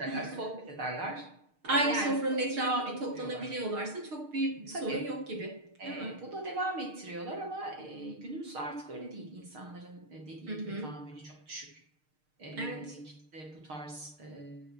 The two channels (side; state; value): left; late; 6.5 ms